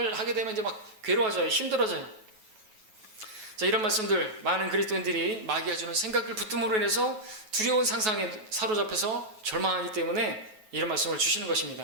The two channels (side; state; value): left; late; 9.3 ms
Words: 하게 되면 이제 막 괴로워져요. 힘들어져요. 자, 이런 말씀들, 많은 그리스도인들이 마귀가 주는 생각을 붙듦으로 인해서 두려운 상상에 사로잡혀서 절망하기 때문에 이런 말씀을 주시는